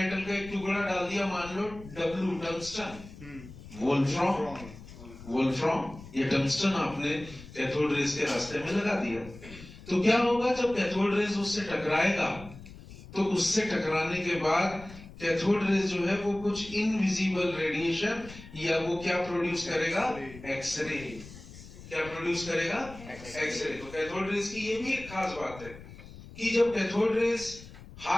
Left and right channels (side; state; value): left; noise; rumble, 16 dB below the sound